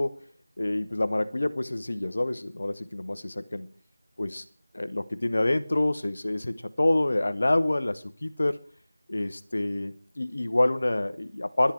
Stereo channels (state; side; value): inverted; both; correlation -1.00